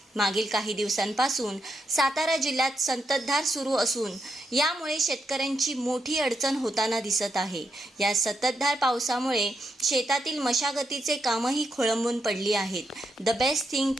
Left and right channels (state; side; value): normal; both; correlation 0.83